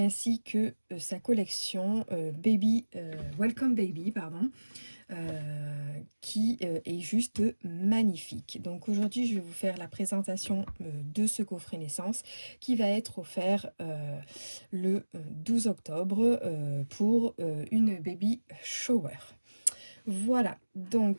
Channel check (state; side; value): inverted; both; correlation -1.00